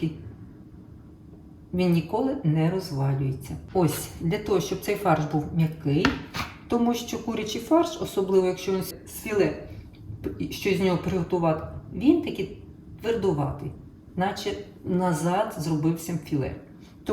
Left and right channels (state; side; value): identical; both; correlation 1.00